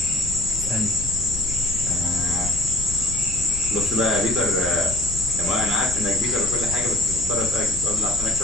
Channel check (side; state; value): left; noise; rumble, 10 dB below the sound